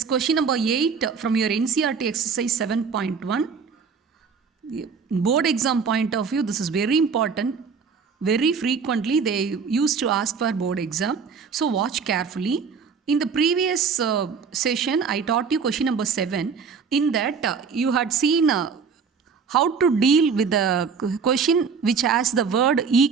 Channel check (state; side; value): quieter; left; 5.8 dB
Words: question number 8 from your NCERT exercise 7.1. Board exam point of view, this is very important. Very frequently they used to ask for board exam, so watch carefully. In the previous session, I taught you question number 7. In that, you had seen how to deal with the question which has the word